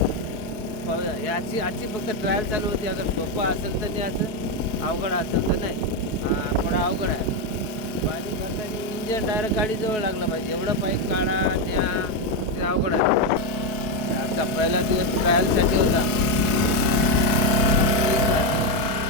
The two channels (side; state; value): right; late; 4.6 ms